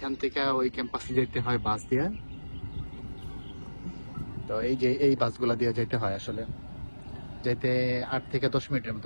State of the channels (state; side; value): inverted; both; correlation -1.00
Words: থেকে ওই ক্যাম্পাসে যেতে হয় বাস দিয়ে। তো এই যে এই বাসগুলা দিয়ে যেতে হয়, আসলে যেতে 8 থেকে 10 মিনিটের